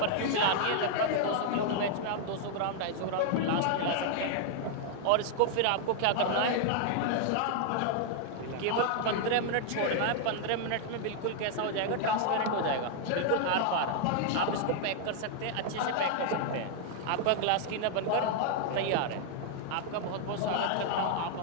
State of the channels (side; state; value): both; different; correlation 0.00